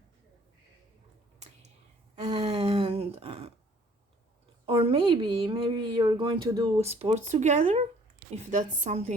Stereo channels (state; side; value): normal; both; correlation 0.57